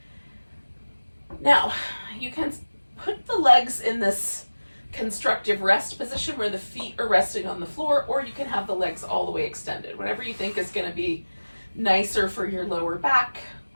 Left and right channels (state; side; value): inverted; both; correlation -1.00